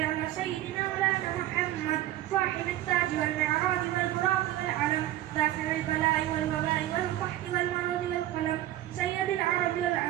سيدنا مولانا محمد صاحب التاج والمعراج والبراق والعلم دافع البلاء والوباء والقحط والمرض والقلم سيد العرب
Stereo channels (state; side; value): quieter; left; 14.2 dB